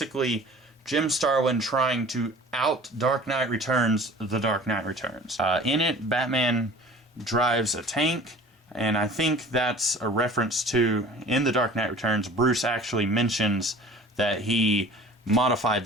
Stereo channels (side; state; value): both; normal; correlation 0.44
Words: Jim Starlin trying to out Dark Knight Returns The Dark Knight Returns. In it, Batman drives a tank, and I think that's a reference to, in The Dark Knight Returns, Bruce actually mentions that he modified